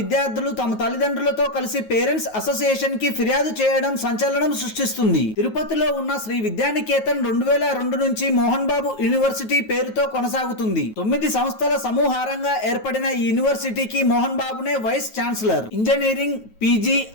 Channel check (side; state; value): right; late; 9.3 ms